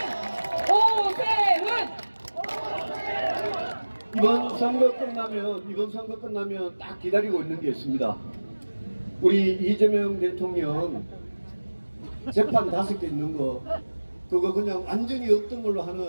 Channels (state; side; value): inverted; both; correlation -1.00